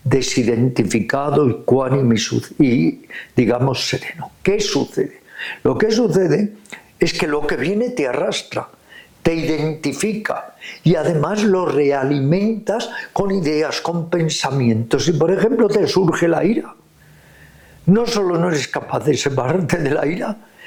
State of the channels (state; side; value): identical; both; correlation 1.00